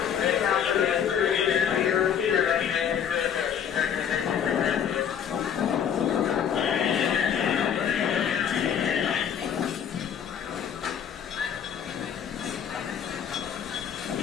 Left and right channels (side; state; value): right; quieter; 8.4 dB